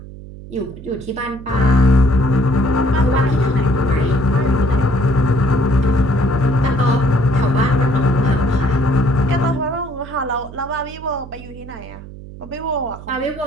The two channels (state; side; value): noise; right; hum, 15 dB below the sound